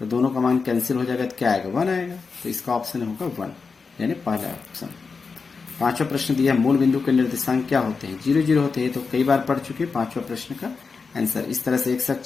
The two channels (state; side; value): quieter; right; 4.9 dB